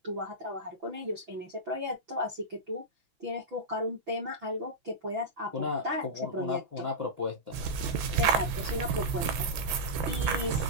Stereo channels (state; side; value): late; left; 6.0 ms